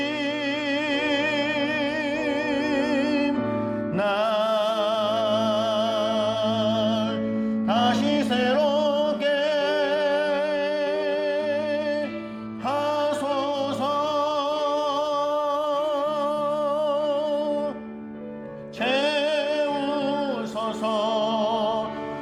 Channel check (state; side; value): identical; both; correlation 1.00